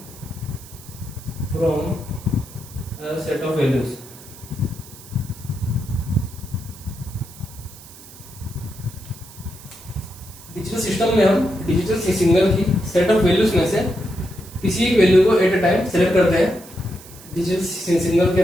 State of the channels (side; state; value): right; noise; hiss, 19 dB below the sound